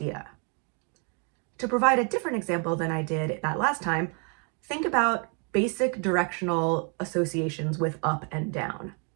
To provide a different example than I did that last time, think about basic directional associations with up and down.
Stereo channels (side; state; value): left; quieter; 37.2 dB